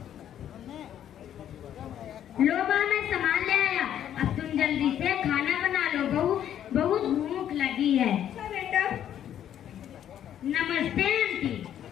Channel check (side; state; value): right; quieter; 10.4 dB